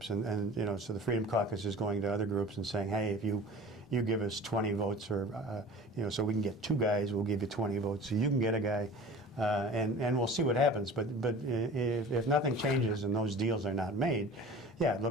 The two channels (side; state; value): both; normal; correlation 0.40